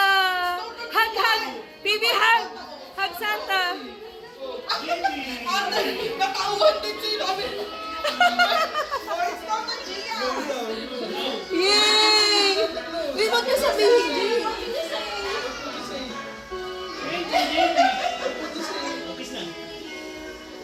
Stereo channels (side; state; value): both; identical; correlation 1.00